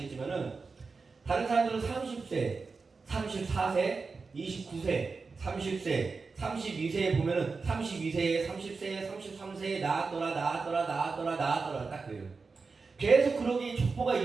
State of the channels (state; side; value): quieter; left; 4.5 dB